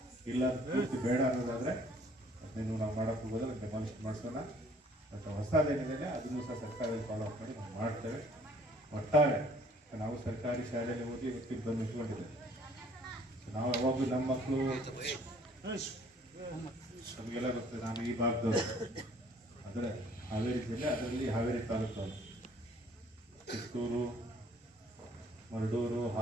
ಇಲ್ಲ ಪೂರ್ತಿ ಬೇಡ ಅನ್ನೋದಾದರೆ ಅದನ್ನು ನಾವು ಮಾಡೋಕ್ಕೆ ಹೋಗೋದ್ರೆ ಡೆಮಾಲಿಷ್ ಮಾಡಿಸೋಣ. ಮತ್ತು ಹೊಸದೇನಿದೆ ಅದನ್ನು ಸಹ ಸರ್ಕಾರದಲ್ಲಿ ಫಾಲೋ ಅಪ್ ಮಾಡಿ ನಾವು ಮಾಡ್ತೇವೆ. ಒಟ್ಟಾರೆ ನಾವು ಸರ್ಕಾರಿ ಶಾಲೆಯಲ್ಲಿ ಓದಿ ಇವತ್ತಿಗೆ ಬಂದು ನಿಂತ್ಕೊಂಡಿದ್ದೇವೆ. ನಾವು ಯಾವಾಗಲೂ ನಮ್ಮ ಮಕ್ಕಳು ನಮಗೆಲ್ಲ ಗೊತ್ತದೆ, ನಾನು ಈ ಭಾಗದವರು ಅಂದರೆ ಹಾವೇರಿ ಜಿಲ್ಲೆ, ಅದರಲ್ಲಿ ಹಾವೇರಿ ತಾಲೂಕವರು, ಚಿತ್ತೂರು, ಮರಡೂರು,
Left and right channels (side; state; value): both; normal; correlation 0.58